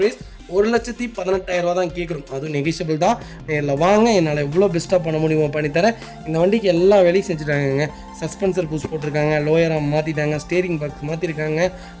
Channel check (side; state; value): both; identical; correlation 1.00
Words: ப்ரைஸ் 1,18,000 தான் கேட்குறோம். அதுவும் நெகிஷியபிள் தான். நேரில் வாங்க, என்னால் எவ்வளோ பெஸ்ட்டாக பண்ண முடியுமோ பண்ணித்தரேன். இந்த வண்டிக்கு எல்லா வேலையும் செஞ்சுட்டாங்க. சஸ்பென்சர் புஷ் போட்டிருக்காங்க, லோயராக மாற்றிட்டாங்க, ஸ்டேரிங் பாக்ஸ் மாற்றிருக்காங்க,